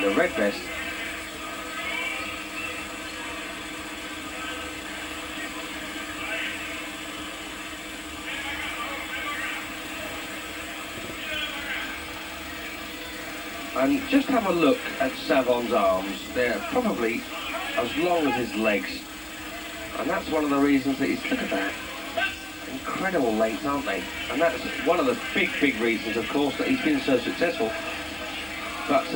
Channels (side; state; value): right; noise; rumble, 30 dB below the sound